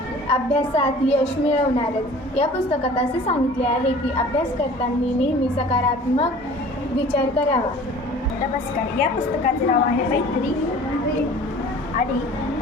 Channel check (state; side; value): normal; both; correlation 0.46